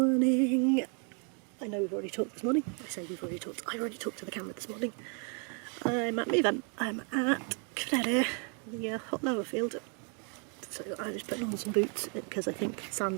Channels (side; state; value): left; quieter; 38.9 dB